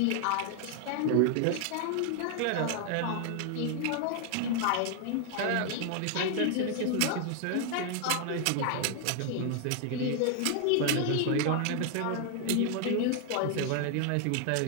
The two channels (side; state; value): both; different; correlation 0.00